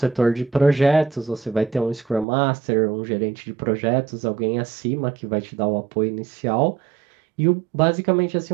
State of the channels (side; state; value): left; drops out; at 2.2 s